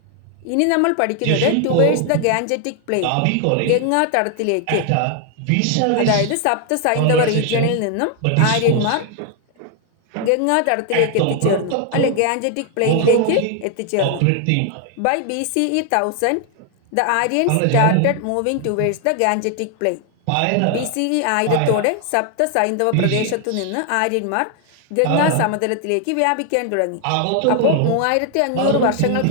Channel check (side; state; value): both; different; correlation 0.00